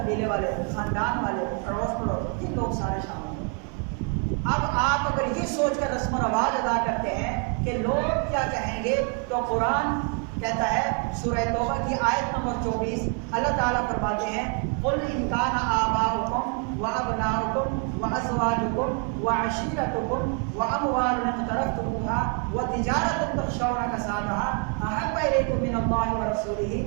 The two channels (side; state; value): left; quieter; 39.9 dB